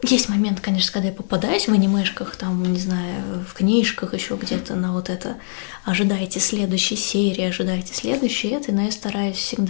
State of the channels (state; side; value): silent; right; digital silence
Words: Есть момент, конечно, когда я попадаюсь в анимешках, там, не знаю, в книжках, еще где-то на вот это ожидайте следующей серии, ожидайте следующей этой, но я стараюсь